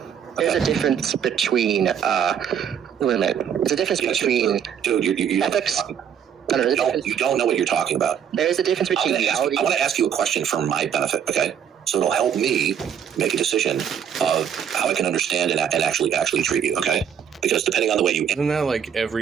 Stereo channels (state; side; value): quieter; left; 8.5 dB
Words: There's a difference between, wait a minute. There's a difference between dude, you ethics. No, you don't know what you're talking about. There is a difference between reality. I want to ask you a question for my benefit, okay? So it'll help me make a decision of how I can understand and actually treat you, okay? Because depending on the way you... Isn't that like